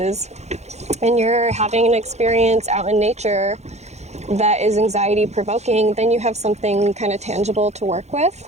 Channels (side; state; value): left; late; 0.32 ms